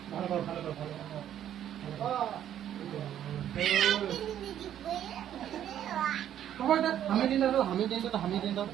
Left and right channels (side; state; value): left; quieter; 10.7 dB